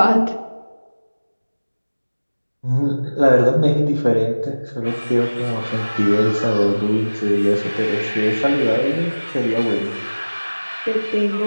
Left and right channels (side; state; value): both; inverted; correlation -1.00